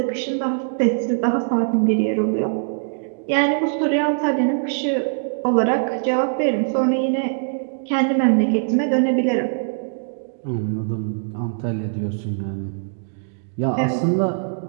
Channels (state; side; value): silent; left; digital silence